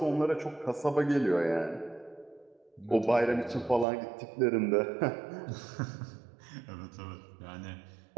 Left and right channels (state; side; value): drops out; left; at 3.9 s